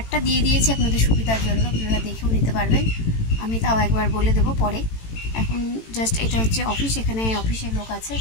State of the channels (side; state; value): right; late; 18 ms